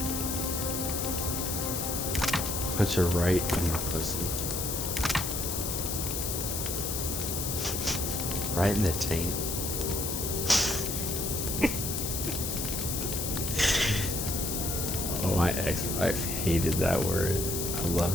Punch her right in the pussy. Right in the taint. Oh, my ex-wife hated that word. I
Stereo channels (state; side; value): noise; left; hiss, 2 dB below the sound